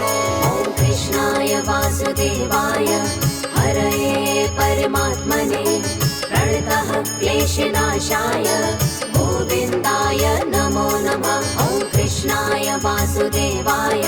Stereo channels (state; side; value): identical; both; correlation 1.00